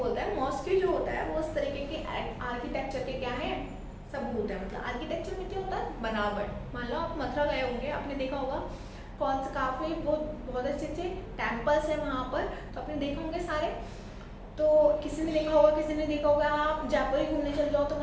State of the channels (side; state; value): both; identical; correlation 1.00